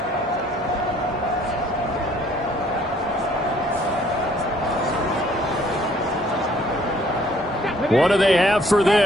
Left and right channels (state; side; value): normal; both; correlation 0.60